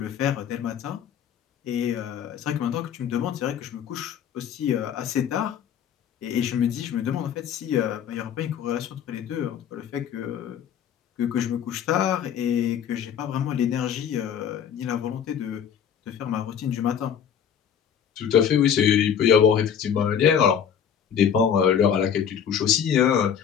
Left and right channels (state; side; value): quieter; right; 8.4 dB